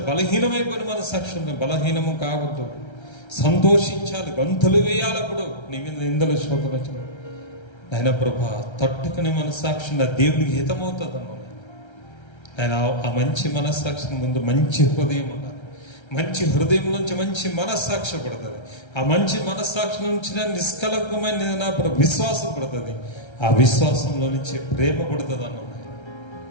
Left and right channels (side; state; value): right; late; 1.3 ms